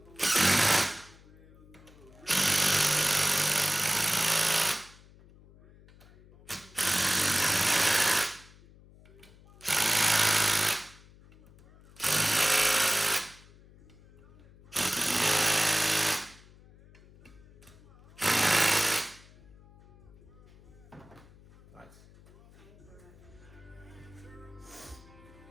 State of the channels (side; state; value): left; noise; hum, 24 dB below the sound